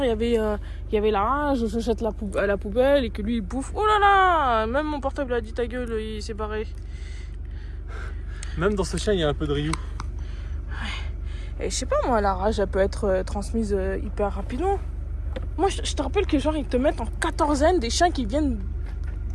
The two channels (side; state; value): both; identical; correlation 1.00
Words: il y avait la rage, je jette à la poubelle et que lui il bouffe. Oh là là, même mon portable a dit ta gueule, il s'est barré. Même dans ce chien, il y a un peu de Ryu. Et je sais pas moi, la rage elle peut être transmise hyper rapidement. Moi je te rappelle que genre ils te mettent en quatorzaine des chiens qui viennent